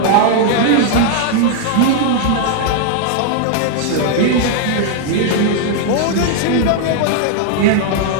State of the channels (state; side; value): different; both; correlation 0.00